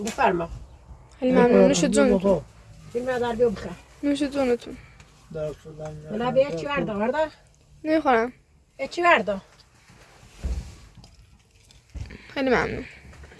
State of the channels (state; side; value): identical; both; correlation 1.00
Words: بفرما خیلی ممنون. نوش جونتون. فیلم در بیو بخه نوش جونتون. بلا بیا چی ورده ورده نمیخورم. چی ورده خیلی ممنون.